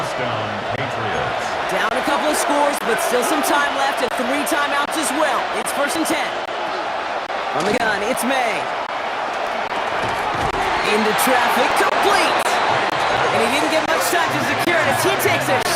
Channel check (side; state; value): both; identical; correlation 1.00